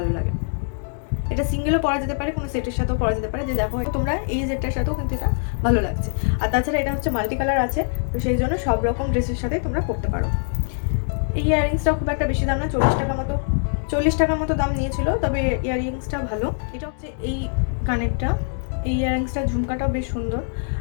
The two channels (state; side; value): silent; right; 63 dB below the other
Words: লাগে। এটা সিঙ্গেলও পরা যেতে পারে, কোনো সেটের সাথেও পরা যেতে পারে। যে দেখো তোমরা এই সেটটার সাথেও কিন্তু এটা ভালো লাগছে। আর তাছাড়া এটা হচ্ছে মাল্টি কালার আছে, তো সেই জন্য সব রকম ড্রেসের সাথে তোমরা পরতে পারো। এই ইয়াররিংসটাও খুব একটা বেশি দাম না, 40 টাকার মতো দাম নিয়েছিল, তবে ইয়াররিংসটা ভালো। এটা হচ্ছে এই কানেরটা, এই ইয়াররিংসটা ঝুমকাটাও বেশ সুন্দর,